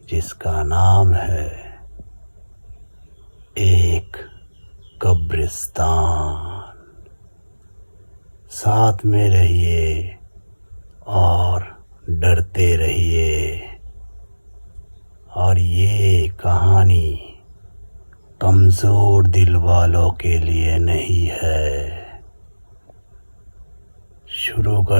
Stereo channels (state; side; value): inverted; both; correlation -1.00